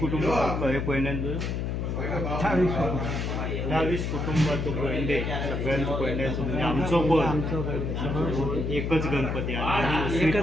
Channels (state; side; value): noise; left; hum, 2 dB below the sound